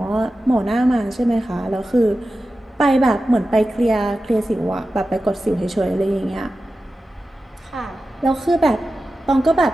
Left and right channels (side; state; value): both; normal; correlation 0.93